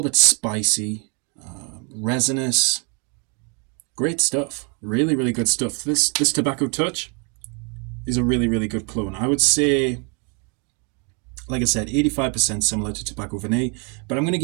bit spicy, resinous. Great stuff. Really, really good stuff. This Tobacco Touch is a really good clone. I would say, like I said, 85% similar to Tobacco Vanille, but I'm going to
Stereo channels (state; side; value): quieter; left; 33.9 dB